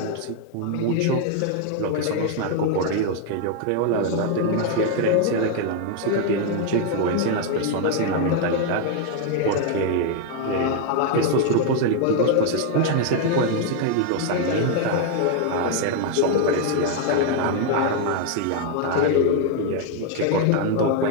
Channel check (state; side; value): different; both; correlation 0.00